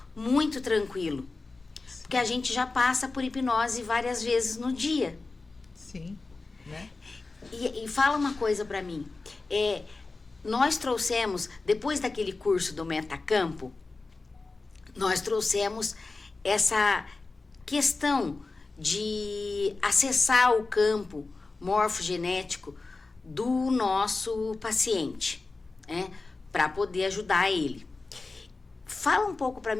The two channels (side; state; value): right; quieter; 3.7 dB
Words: muito tranquilo, porque a gente já passa por hipnose várias vezes no dia. Sim, né? E fala uma coisa para mim, nós trouxemos, depois daquele curso do Metacampo, nós trouxemos essa questão de acessar o campo morfogenético do nosso paciente, né, para poder ajudar ele. Fala um pouco para